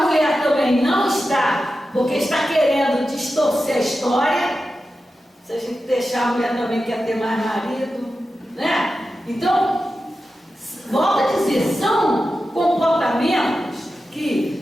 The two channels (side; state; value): both; normal; correlation 0.91